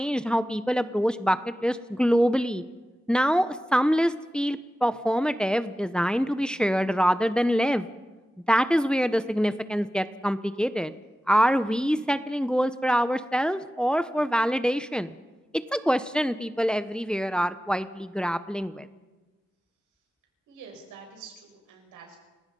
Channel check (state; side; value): normal; both; correlation 0.95